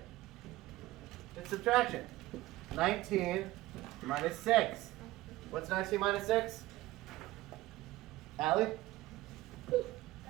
It's subtraction. 19 minus 6. What's 19 minus 6? Allie?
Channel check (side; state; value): left; quieter; 17.6 dB